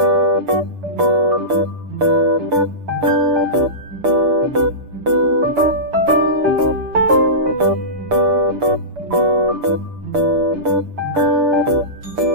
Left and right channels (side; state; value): left; late; 6.8 ms